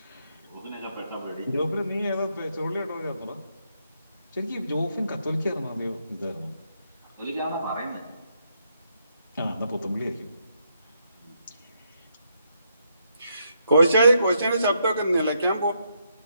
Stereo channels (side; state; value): both; inverted; correlation -0.77